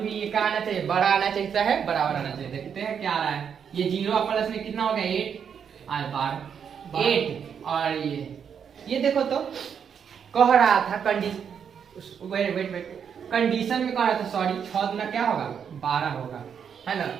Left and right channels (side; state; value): left; quieter; 7.5 dB